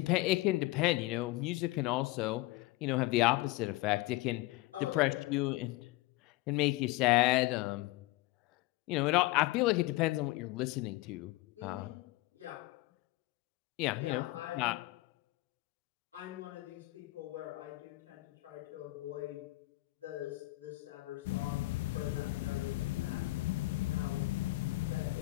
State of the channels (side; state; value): right; quieter; 19.9 dB